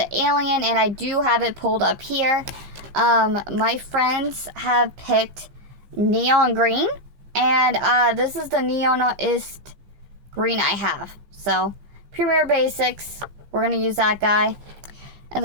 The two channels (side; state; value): left; late; 15 ms